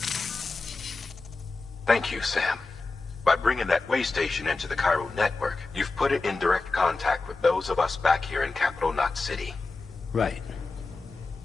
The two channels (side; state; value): right; quieter; 3.7 dB